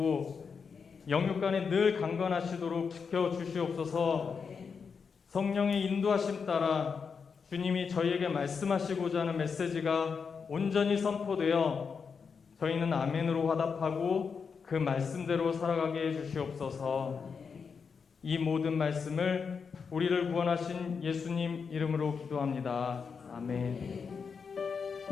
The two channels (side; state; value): right; quieter; 5.8 dB